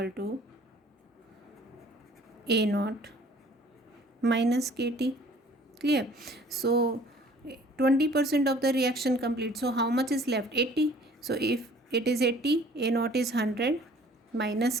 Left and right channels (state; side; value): normal; both; correlation 0.53